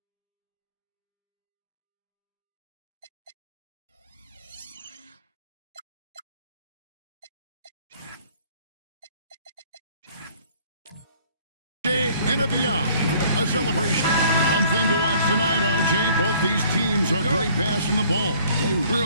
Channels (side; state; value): both; inverted; correlation -0.56